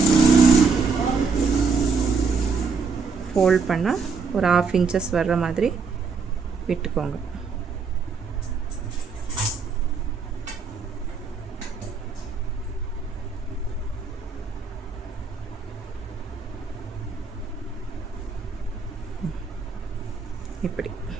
ஃபோல்ட் பண்ணால் ஒரு 1/2 இன்ச்சஸ் வர்ற மாதிரி விட்டுக்கோங்க. இப்படி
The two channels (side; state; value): left; quieter; 5.0 dB